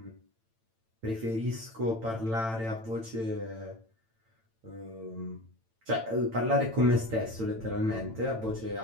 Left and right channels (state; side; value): late; left; 8.9 ms